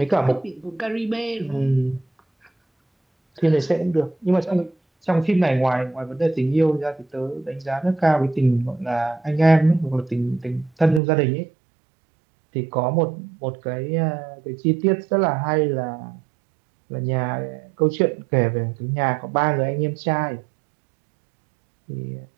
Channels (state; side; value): drops out; left; at 11.0 s